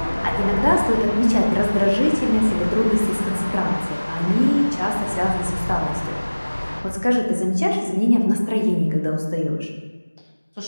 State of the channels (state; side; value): inverted; both; correlation -1.00